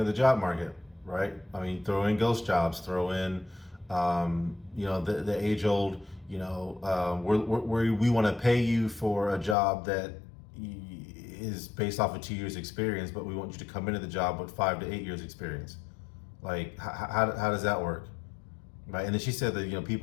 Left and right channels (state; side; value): drops out; right; at 9.6 s